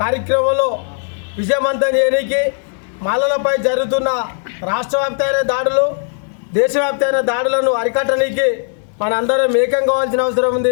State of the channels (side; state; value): right; silent; 68 dB below the other